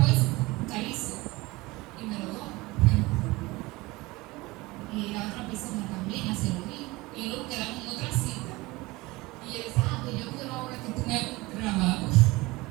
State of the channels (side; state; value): left; quieter; 21.6 dB